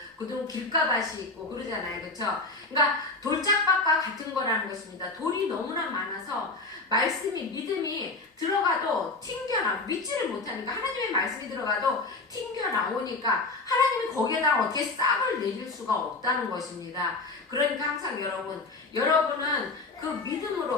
그다음 길가밭이 있고, 그러잖아요. 그쵸? 그러니까 돌짝밭과 같은 거라는 것입니다. 돌이 너무나 많아서 말씀이, 믿음이 들어가도 튕겨나, 믿지를 못하니까, 하나님의 말씀이 들어가도 튕겨나오니까 하나님이 거기에다 어떻게 싹을 내릴 수가 없다는 것입니다. 그러니까 항상 여러분은 그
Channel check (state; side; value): quieter; right; 3.4 dB